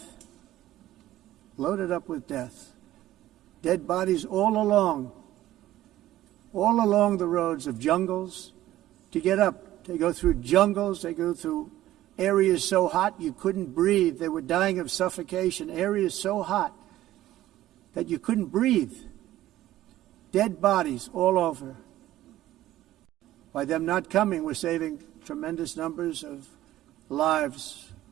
Loaded up with death. Dead bodies all along the roads of jungles. To get up, they go through jungles, they go through areas so hot you couldn't breathe. They were dying of suffocation, areas so hot that you couldn't breathe. Dead bodies all over. By them not coming, we're saving tremendous numbers of lives.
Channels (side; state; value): left; quieter; 14.5 dB